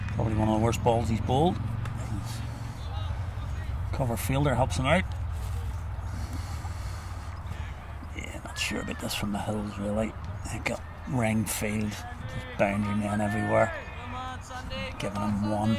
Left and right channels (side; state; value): both; identical; correlation 1.00